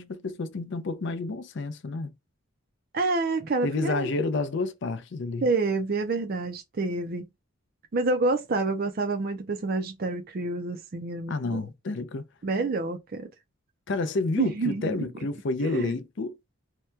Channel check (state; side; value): normal; both; correlation 0.29